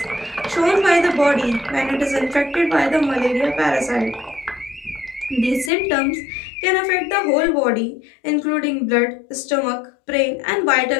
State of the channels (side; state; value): right; drops out; at 5.7 s